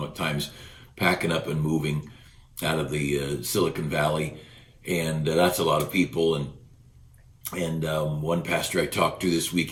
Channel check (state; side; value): identical; both; correlation 1.00